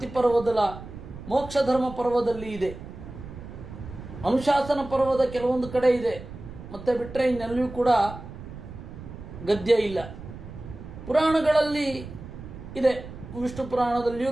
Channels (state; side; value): noise; right; rumble, 13 dB below the sound